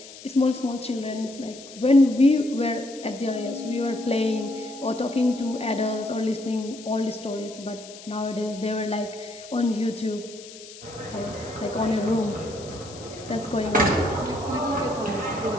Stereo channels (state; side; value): noise; left; hiss, 17 dB below the sound